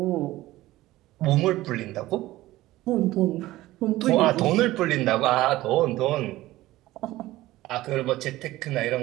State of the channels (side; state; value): left; quieter; 16.8 dB